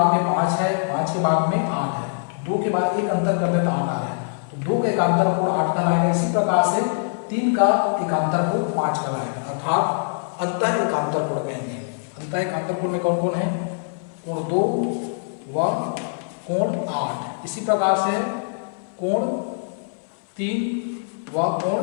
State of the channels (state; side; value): silent; right; 59 dB below the other